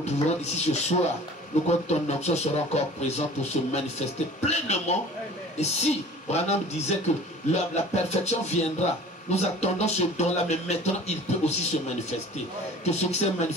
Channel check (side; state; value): both; normal; correlation 0.44